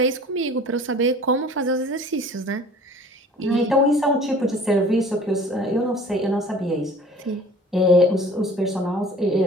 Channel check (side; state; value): both; normal; correlation 0.46